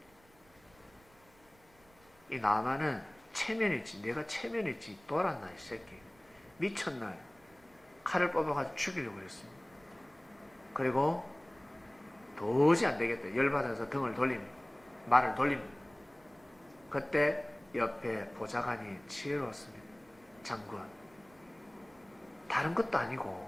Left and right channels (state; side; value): noise; right; rumble, 29 dB below the sound